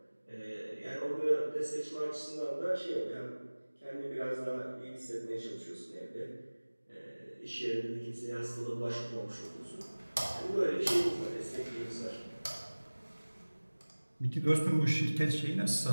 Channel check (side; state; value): both; inverted; correlation -1.00